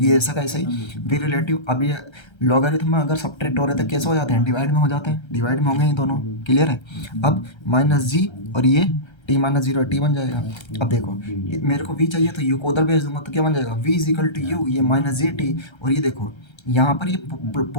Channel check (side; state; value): right; late; 1.3 ms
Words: ऐसा कैसे ही वी रिलेटिव। अब ये लॉगरिथम में अगर सब्ट्रैक्ट हो रहे तो कैसे हो जाते हैं, डिवाइड में हो जाते हैं, डिवाइड में होंगे ये दोनों। क्लियर है। अब माइनस जी और ये टी माइनस जीरो टी बन जाएगा। अब देखो मेरे को वी चाहिए तो यू को उधर भेज दूंगा तो क्या बन जाएगा, v is equal to u, ये माइनस जी टी, और ये देखो यहाँ पर ये